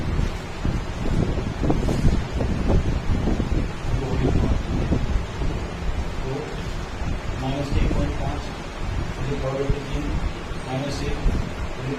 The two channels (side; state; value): both; identical; correlation 1.00